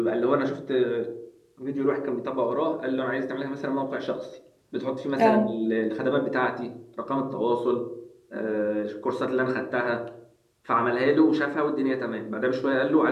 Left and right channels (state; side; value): identical; both; correlation 1.00